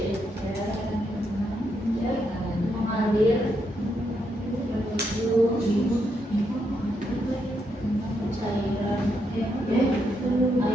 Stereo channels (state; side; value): normal; both; correlation 0.79